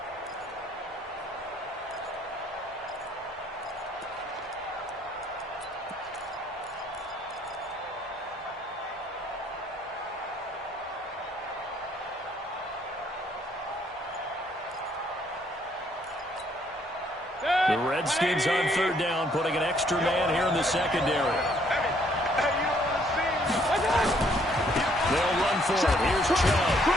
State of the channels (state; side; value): normal; both; correlation 0.66